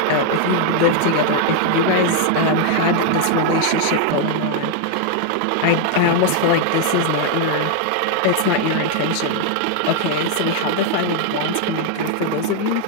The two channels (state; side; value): different; both; correlation 0.00